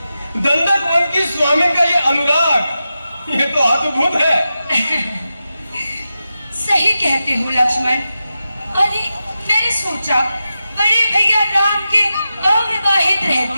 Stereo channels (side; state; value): both; inverted; correlation -0.91